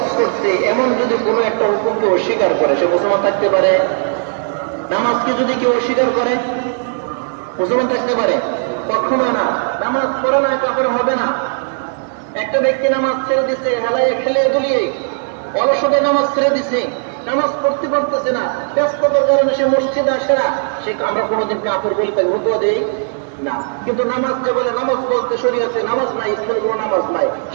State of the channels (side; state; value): left; silent; 60 dB below the other